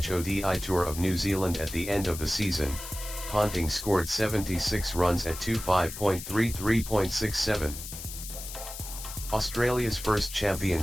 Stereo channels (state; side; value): noise; left; hiss, 10 dB below the sound